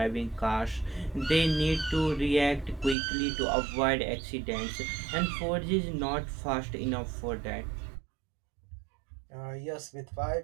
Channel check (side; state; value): left; drops out; at 3.0 s